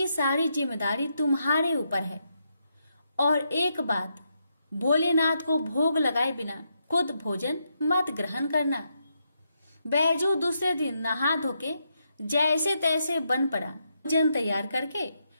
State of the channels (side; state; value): both; inverted; correlation -0.81